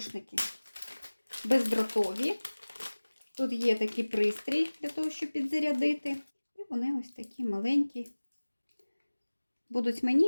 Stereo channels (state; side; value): inverted; both; correlation -1.00